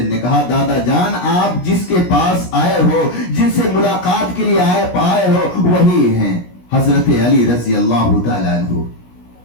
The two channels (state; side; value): late; right; 17 ms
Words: نے کہا دادا جان آپ جس کے پاس آئے ہو، جن سے ملاقات کے لیے آئے ہو، وہی ہیں حضرت علی رضی اللہ تعالیٰ عنہ۔